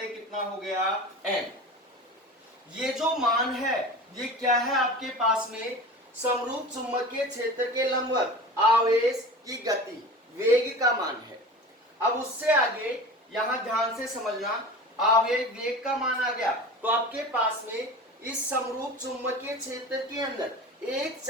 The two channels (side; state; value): both; normal; correlation 0.34